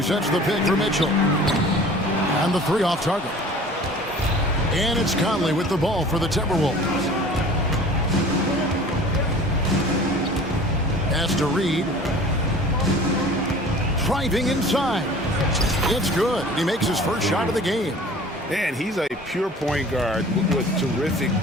sets the pick for Mitchell. And the three off target. And it's Conley with the ball for the Timberwolves. Pass to Reed. Driving inside. It's good. He makes his first shot of the game. And he's a pure point guard with terrific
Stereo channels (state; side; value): normal; both; correlation 0.45